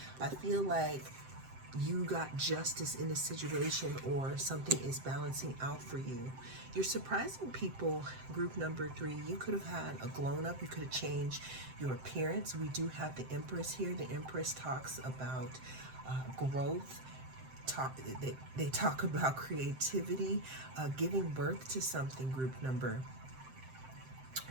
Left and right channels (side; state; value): left; late; 7.7 ms